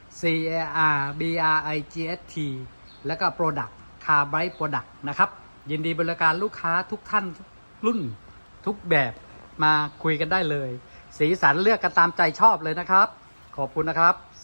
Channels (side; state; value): both; inverted; correlation -1.00